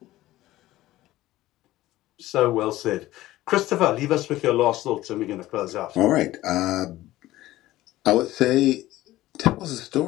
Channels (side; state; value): right; quieter; 16.1 dB